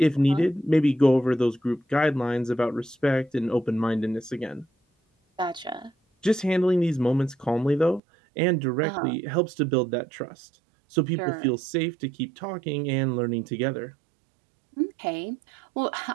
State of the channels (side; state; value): left; drops out; at 8.0 s